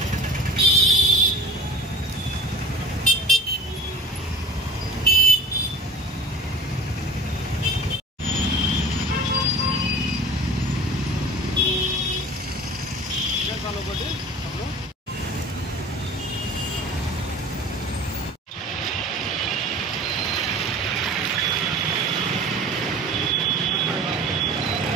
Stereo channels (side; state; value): both; normal; correlation 0.40